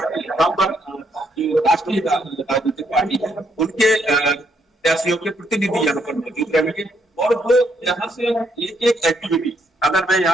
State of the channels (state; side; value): normal; both; correlation 0.74